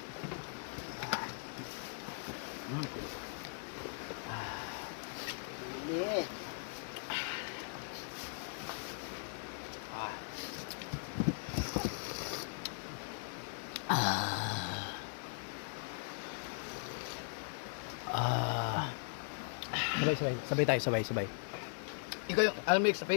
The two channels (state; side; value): silent; right; 52 dB below the other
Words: Sabay tayo, sabay. Ikaw yung almix sa